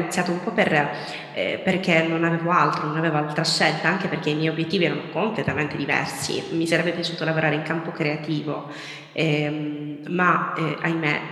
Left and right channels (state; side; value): identical; both; correlation 1.00